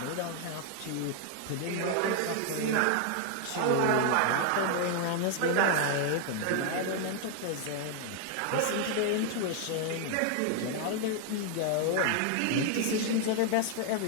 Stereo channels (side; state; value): both; different; correlation 0.00